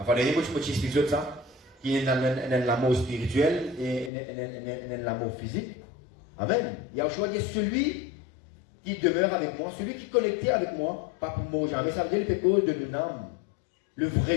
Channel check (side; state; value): right; drops out; at 4.1 s